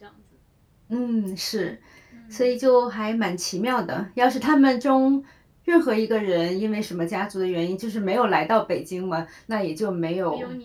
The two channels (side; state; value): both; identical; correlation 1.00